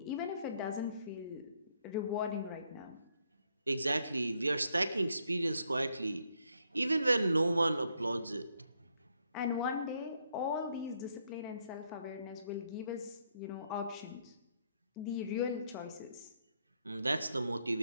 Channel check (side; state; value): both; inverted; correlation -0.73